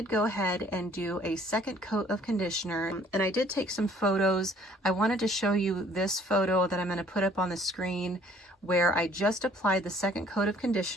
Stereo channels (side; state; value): both; normal; correlation 0.58